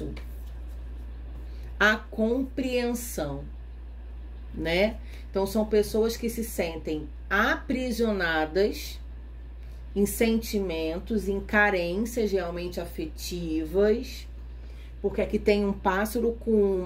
A compreensão, né? Então são pessoas que se sentem aprisionadas em sentimentos, em carências realmente afetivas, porque aqui tem um pássaro com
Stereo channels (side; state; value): both; identical; correlation 1.00